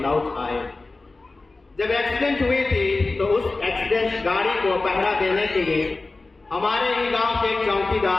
लौट आए। जब एक्सीडेंट हुई थी तो उस एक्सीडेंट गाड़ी को पहरा देने के लिए हमारे ही गांव के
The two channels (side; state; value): right; quieter; 3.4 dB